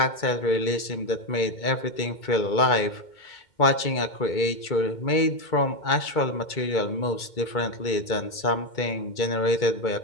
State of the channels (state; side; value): late; right; 2.3 ms